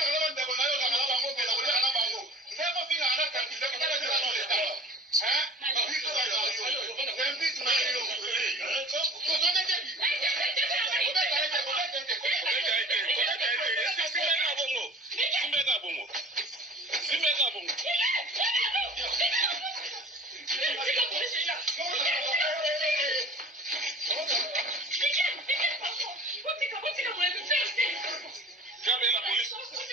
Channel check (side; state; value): both; normal; correlation 0.43